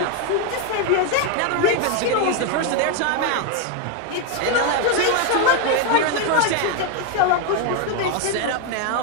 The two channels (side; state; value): both; different; correlation 0.01